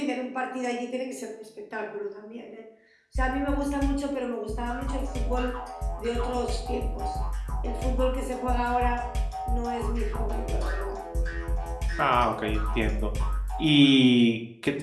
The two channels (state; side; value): identical; both; correlation 1.00